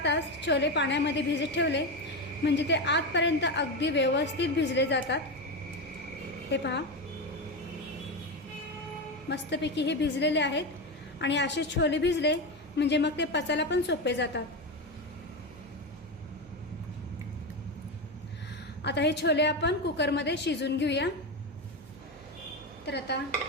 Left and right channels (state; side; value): noise; right; hum, 23 dB below the sound